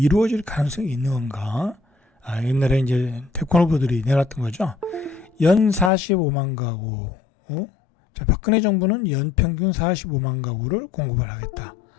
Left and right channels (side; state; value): right; drops out; at 5.9 s